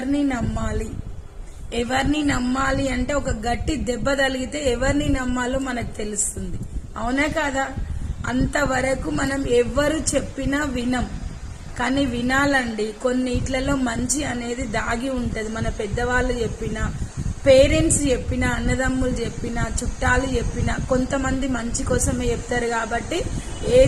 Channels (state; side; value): identical; both; correlation 1.00